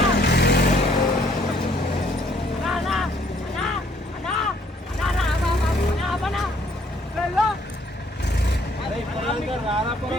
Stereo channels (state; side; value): normal; both; correlation 0.64